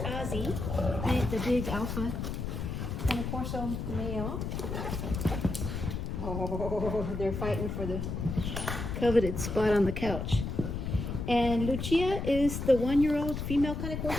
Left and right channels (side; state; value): left; noise; rumble, 4 dB below the sound